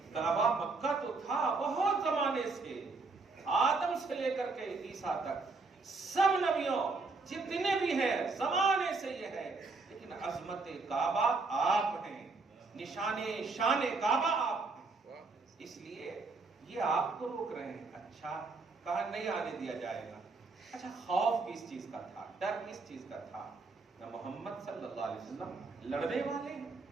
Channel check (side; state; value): left; quieter; 3.9 dB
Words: کعبہ مکہ تو تھا بہت زمانے سے، آدم سے لے کر کے عیسیٰ تک سب نبیوں جتنے بھی ہیں زمانے سے یہ ہے. لیکن عظمت کعبہ آپ ہیں، نشان شان کعبہ آپ ہیں. اس لیے یہ آپ کو روک رہے ہیں. اچھا کہا نہیں آنے دیا جائے گا. اچھا خوف کس چیز کا تھا، ڈر کس چیز کا تھا؟ نہ محمد صلی اللہ علیہ وسلم لڑنے والے ہیں،